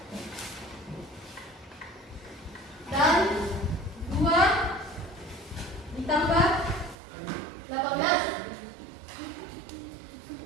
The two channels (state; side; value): drops out; left; at 7.0 s